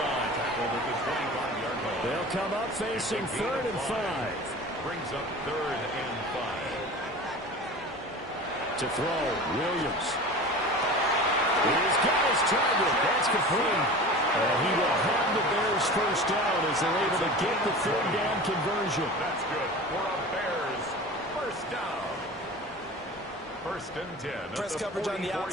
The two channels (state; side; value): normal; both; correlation 0.36